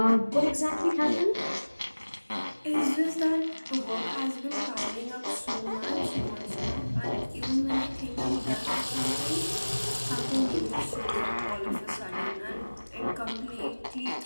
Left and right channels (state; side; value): inverted; both; correlation -1.00